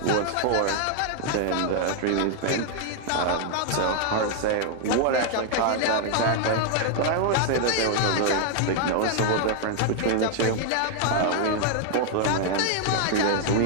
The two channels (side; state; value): both; different; correlation 0.00